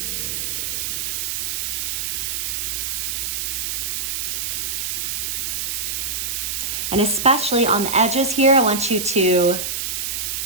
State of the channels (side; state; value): right; noise; hiss, 1 dB below the sound